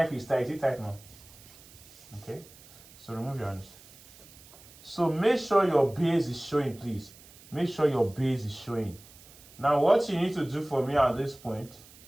if it's tight. Is it tight now? Okay. So remove your hands. So make sure your base is showing, please. Make sure your base is showing. Now what you need to do for me at this point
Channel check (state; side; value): noise; right; hiss, 22 dB below the sound